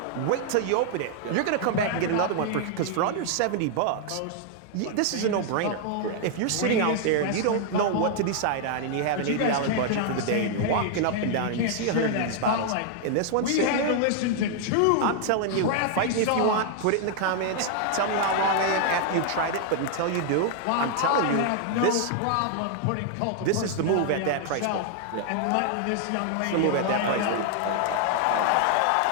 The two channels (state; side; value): different; both; correlation 0.00